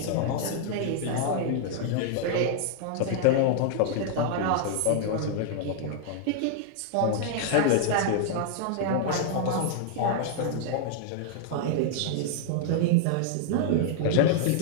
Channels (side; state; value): both; different; correlation 0.00